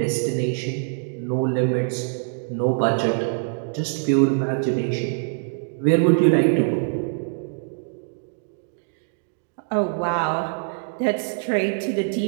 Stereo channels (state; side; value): silent; left; digital silence